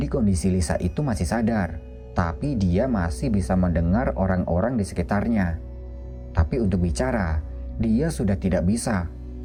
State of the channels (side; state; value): both; identical; correlation 1.00